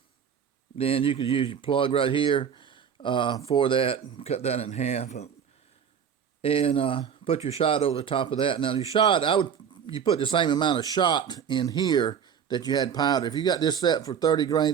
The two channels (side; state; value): left; quieter; 7.7 dB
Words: then you could use your plug right here for that, cut that in half, and put your shot over the top of that. Now your shot, you put the same amount of shot in here that you had powder. If you got this set for 30